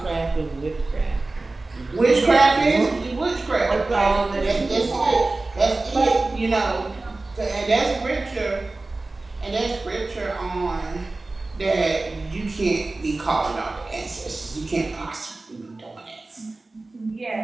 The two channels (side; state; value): left; quieter; 3.2 dB